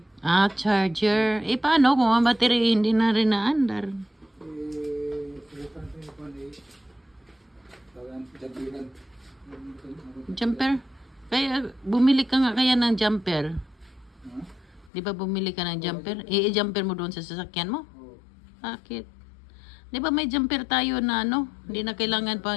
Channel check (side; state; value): right; drops out; at 14.9 s